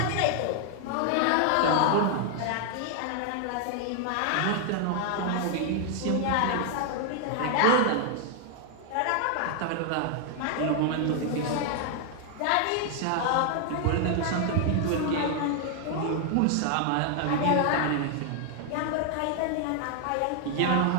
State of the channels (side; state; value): both; different; correlation 0.00